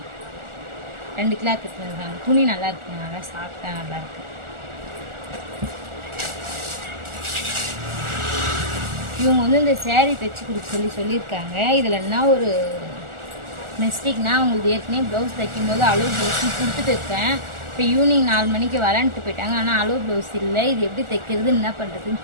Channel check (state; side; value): late; left; 1.4 ms